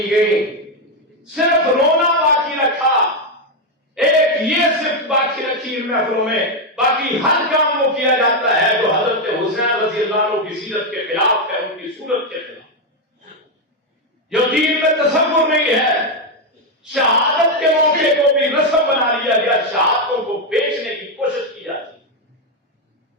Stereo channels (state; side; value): normal; both; correlation 0.05